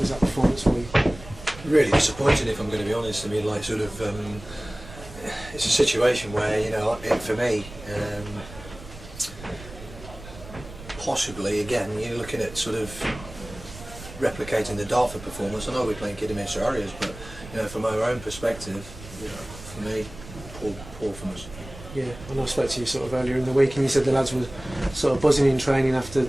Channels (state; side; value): noise; right; rumble, 15 dB below the sound